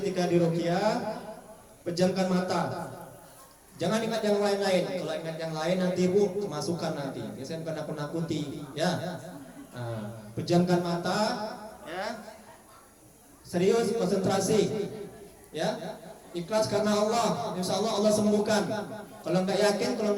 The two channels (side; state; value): both; identical; correlation 1.00